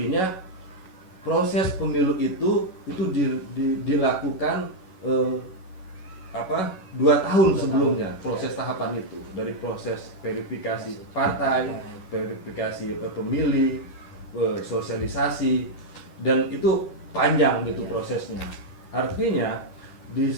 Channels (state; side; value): late; right; 11 ms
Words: proses pemilu itu dilakukan 2 tahun sebelumnya, proses tahapan itu, dari proses verifikasi partai, verifikasi pemilih, sosialisasi, dan itu panjang gitu prosesnya. Artinya